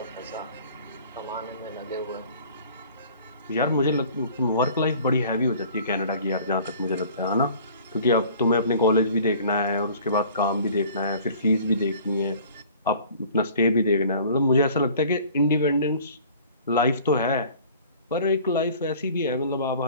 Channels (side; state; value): both; inverted; correlation -0.49